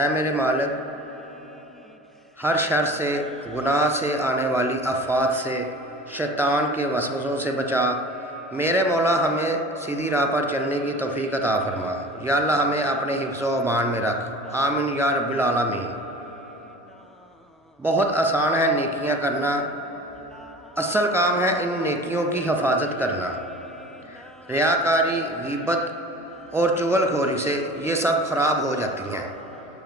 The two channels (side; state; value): both; normal; correlation 0.40